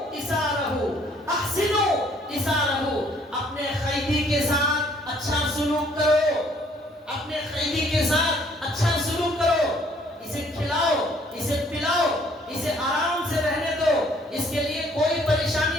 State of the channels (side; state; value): both; normal; correlation 0.61